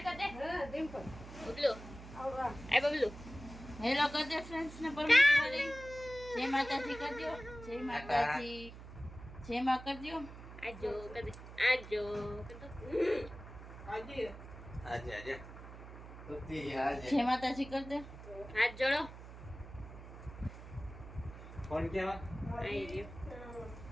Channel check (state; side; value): noise; right; hum, 14 dB below the sound